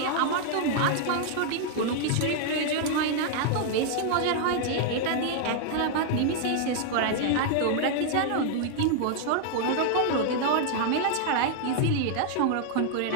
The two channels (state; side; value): different; both; correlation 0.00